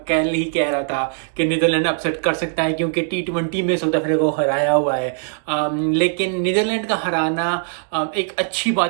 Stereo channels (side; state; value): left; silent; digital silence